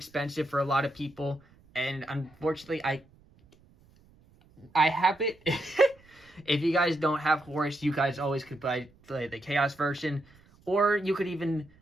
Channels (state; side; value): noise; right; rumble, 29 dB below the sound